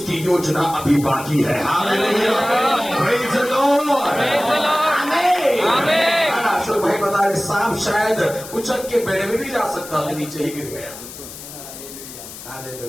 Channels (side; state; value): left; noise; hiss, 14 dB below the sound